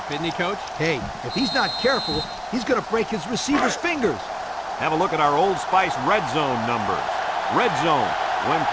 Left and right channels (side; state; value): both; identical; correlation 1.00